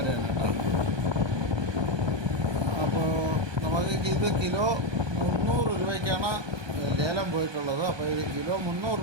കേട്ടോ. അപ്പോൾ നമുക്ക് ഇത് കിലോ 300 രൂപയ്ക്കാണ് ലേലം പോയിട്ടുള്ളത്. അപ്പോൾ ഇത് കിലോ 300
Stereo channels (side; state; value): left; late; 1.2 ms